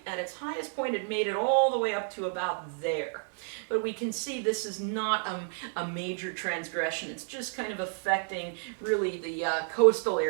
At its highest point, it made it all the way up to about there. But we can see this is not a major transgression. It's just kind of affecting really the coastal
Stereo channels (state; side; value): silent; left; 57 dB below the other